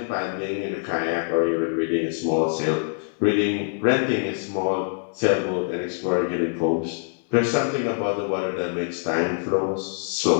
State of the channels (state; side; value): silent; right; 62 dB below the other